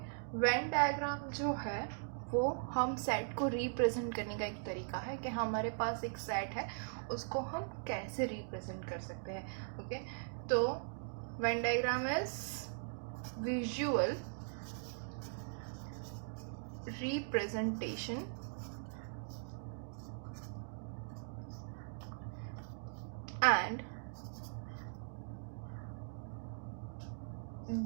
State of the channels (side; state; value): left; silent; digital silence